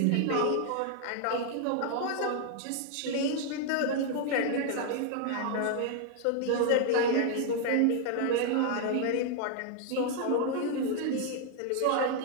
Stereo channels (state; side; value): different; both; correlation 0.00